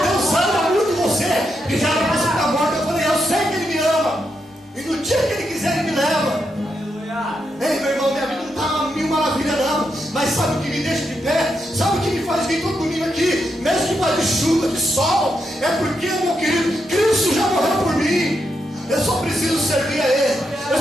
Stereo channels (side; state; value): both; normal; correlation 0.83